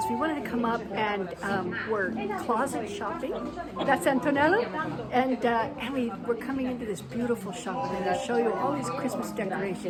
we wanted to come up and we're closet shopping. That's Antonella, and we're coming into this beautiful shop. I'm going to show you all these Christmas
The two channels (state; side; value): identical; both; correlation 1.00